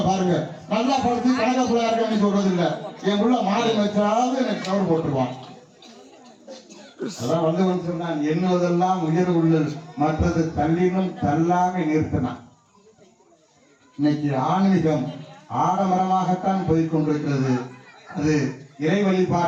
பாருங்க, நல்லா படுத்து கணக்க புள்ளா இருக்கன்னு சொல்றது இல்ல, என் புள்ள மாடு வச்சாலும் எனக்கு கவர் போட்டுருவான். அதான் வந்து சொன்னான், என்னதெல்லாம் உயர் உள்ளது மற்றது தள்ளினும் தள்ளாக நிறுத்தினான். இன்னைக்கு ஆன்மீகம் ஆடம்பரமாகத்தான் போய்கொண்டிருக்கிறது. அது இறை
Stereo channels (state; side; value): identical; both; correlation 1.00